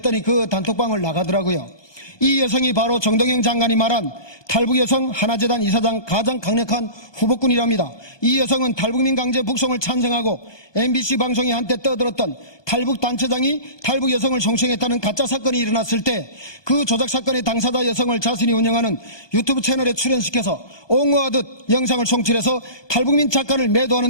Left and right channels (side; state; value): right; late; 1.2 ms